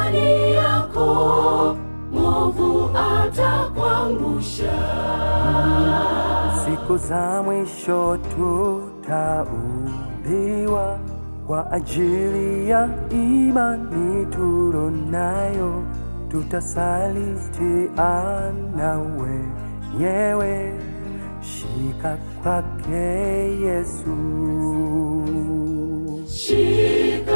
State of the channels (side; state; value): both; inverted; correlation -1.00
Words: yako, mwovu atakuangusha. Siku za mwisho tutaumbiwa kwa ajili ya imani tulonayo, tutasalitiana wenyewe. Shika kwake Yesu.